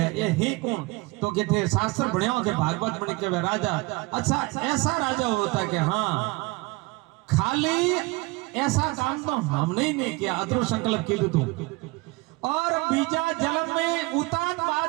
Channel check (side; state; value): left; quieter; 24.4 dB